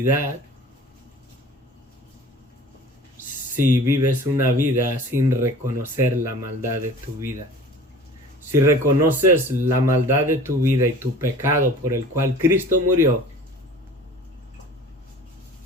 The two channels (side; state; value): both; normal; correlation 0.44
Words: si vives una vida sin reconocer la maldad de tu vida. Si reconoces la maldad de tu vida y tu pecado por el cual Cristo murió,